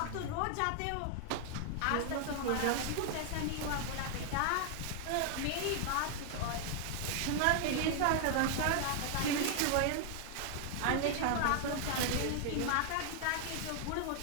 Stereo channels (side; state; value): both; different; correlation 0.00